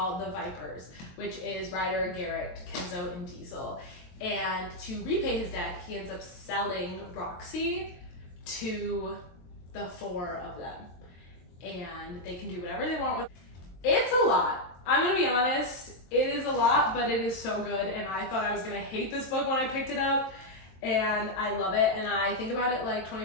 the Vipers, which is Ryder, Garrett, Kenzo, and Diesel. And to repay his debt, he ends up selling Roxy to the 4 of them. And they can do whatever they want with it. It's a lot. I'm gonna be honest, it is a lot, but it is so good. And I thought I was gonna hate this book when I picked it up. And I love it, and I think about it like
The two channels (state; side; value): late; right; 23 ms